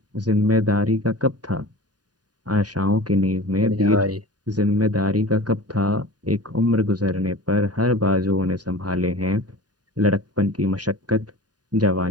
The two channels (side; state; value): left; late; 0.69 ms